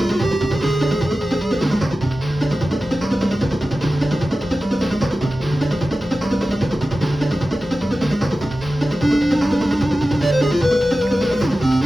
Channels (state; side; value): normal; both; correlation 0.94